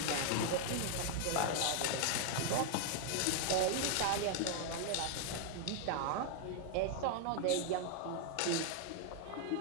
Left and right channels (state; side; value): different; both; correlation 0.00